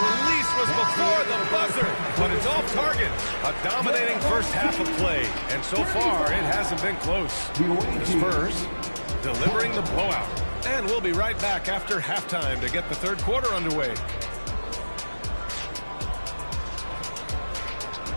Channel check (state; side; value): inverted; both; correlation -1.00